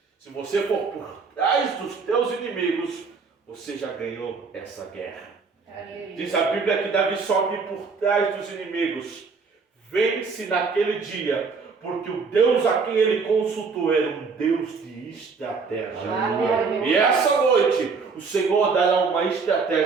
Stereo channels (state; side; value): quieter; left; 4.9 dB